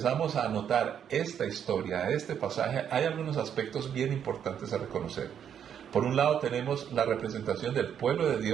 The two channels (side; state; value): left; quieter; 8.7 dB